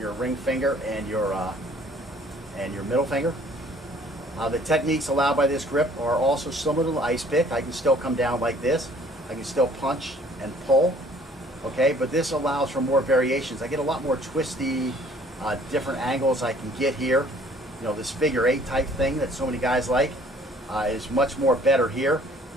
ring finger, and your middle finger. The techniques allowed by this grip are also similar to the ice pick. I can still come down like this. I can still punch and pull, okay, but this allows for more variations. I get a lot more twisty, different angles I can get here. You know, this figure 8 type thing that so many guys like is much more better here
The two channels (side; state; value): both; normal; correlation 0.56